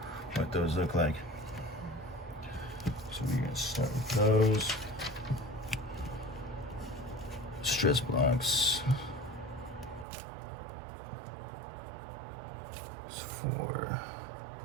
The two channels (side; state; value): left; drops out; at 10.1 s